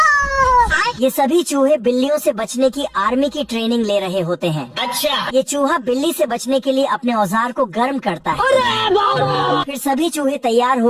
ये सभी चूहे बिल्लियों से बचने की आर्मी की ट्रेनिंग ले रहे होते हैं। ये चूहा बिल्ली से बचने के लिए अपने औजार को गर्म करता है। फिर सभी चूहे तैयार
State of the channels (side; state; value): both; identical; correlation 1.00